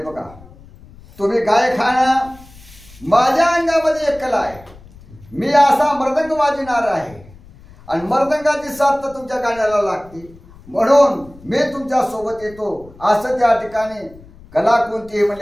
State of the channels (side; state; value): left; noise; rumble, 22 dB below the sound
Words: बघा तुम्ही गायखाना माझ्या अंगामध्ये एक कला आहे. मी असा मृदंग वाजविणार आहे आणि मृदंगाची साथ तर तुमच्या गाण्याला लागते म्हणून मी तुमच्या सोबत येतो असं त्या ठिकाणी कला कोणती